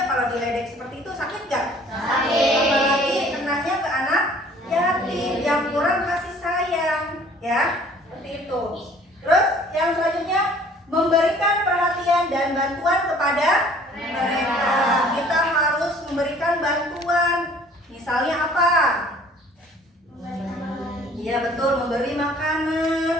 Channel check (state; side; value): normal; both; correlation 0.54